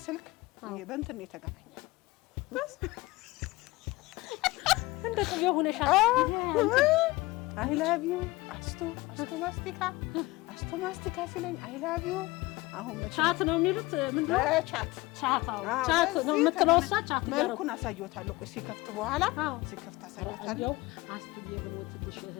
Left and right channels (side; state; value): right; quieter; 20.8 dB